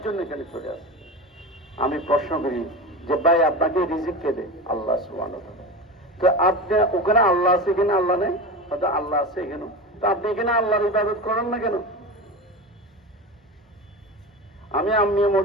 জন্য এখানে চলে আসছে। আমি প্রশ্ন করি যে ভাই আপনাকে রিজিক কে দেয়? আল্লাহ সুবহানাহু ওয়া তাআলা। তো আপনি ওখানে আল্লাহ আছে, এখানে আল্লাহ নেই? হয়তো আল্লাহ আছে এখানে, তো আপনি এখানে আল্লাহর ইবাদত করেন না কেন? আমি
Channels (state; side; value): normal; both; correlation 0.26